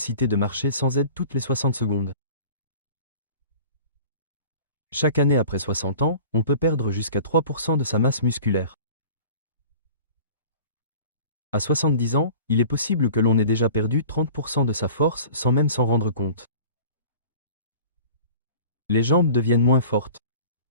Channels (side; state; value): both; inverted; correlation -0.44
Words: de marcher sans aide toutes les 60 secondes. Chaque année après 60 ans, on peut perdre jusqu'à 3% de sa masse musculaire. À 70 ans, il est possible que l'on ait déjà perdu 30% de sa force sans même s'en rendre compte. Les jambes deviennent moins fortes.